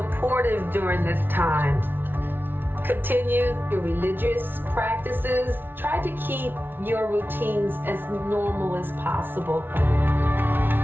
during this time. Continue your religious practices. Try to keep your routines as normal as possible.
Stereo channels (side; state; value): left; late; 0.10 ms